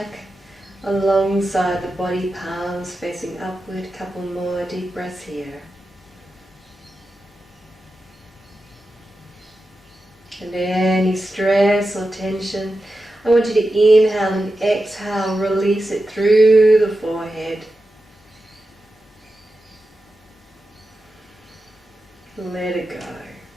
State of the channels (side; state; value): both; normal; correlation 0.91